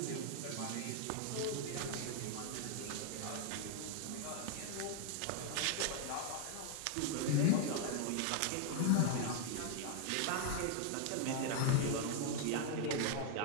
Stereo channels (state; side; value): different; both; correlation 0.00